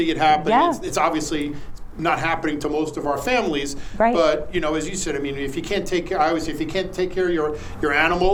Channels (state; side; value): identical; both; correlation 1.00